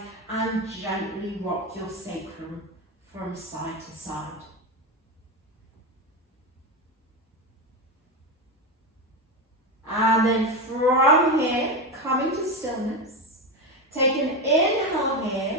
and gently rock your sacrum from side to side. And then from here, coming to stillness, take an inhale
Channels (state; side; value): normal; both; correlation 0.15